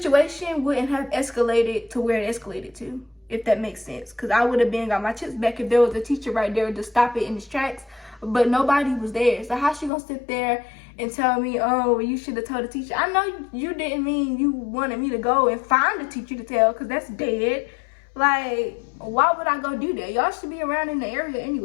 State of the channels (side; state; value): right; drops out; at 9.9 s